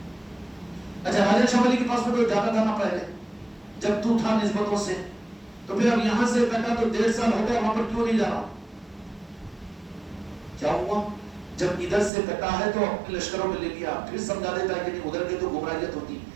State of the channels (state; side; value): drops out; left; at 12.1 s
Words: اچھا راجہ شاہ ولی کے پاس میں تو جاتا تھا نا پہلے جب تو تھا نسبتوں سے، تو پھر اب یہاں سے کٹا تو 1.5 سال ہو گیا، وہاں پر کیوں نہیں جا رہا؟ کیا ہوا؟ جب ادھر سے کٹا ہے تو اپنے لشکروں میں لے لیا، پھر سمجھا دیتا ہے کہ نہیں ادھر کے تو گمراہیت ہوتی،